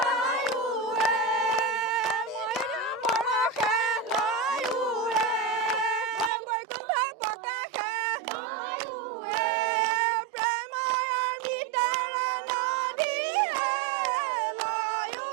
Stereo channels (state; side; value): drops out; left; at 6.3 s